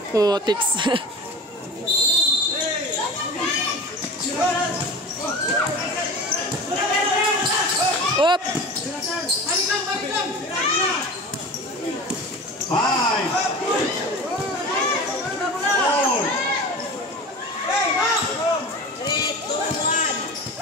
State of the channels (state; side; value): normal; both; correlation 0.34